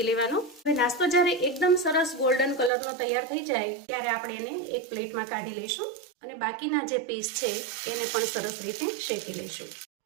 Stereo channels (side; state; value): left; drops out; at 2.7 s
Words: લેવાનો. હવે નાસ્તો જ્યારે એકદમ સરસ ગોલ્ડન કલરનો તૈયાર થઈ જાય ત્યારે આપણે એને એક પ્લેટમાં કાઢી લઈશું અને બાકીના જે પીસ છે એને પણ સરસ રીતે શેકી લઈશું.